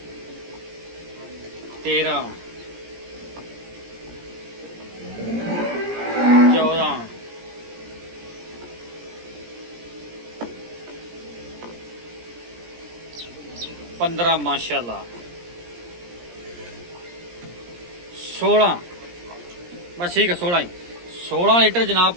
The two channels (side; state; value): left; late; 17 ms